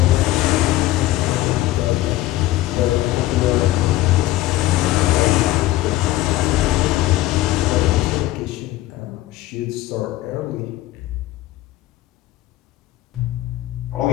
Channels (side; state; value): right; quieter; 16.2 dB